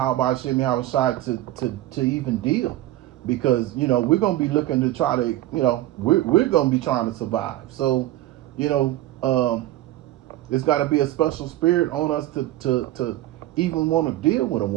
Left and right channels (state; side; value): quieter; left; 15.3 dB